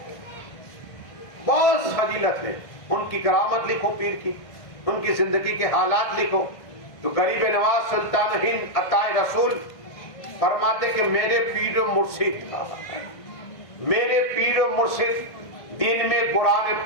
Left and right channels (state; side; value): late; right; 1.5 ms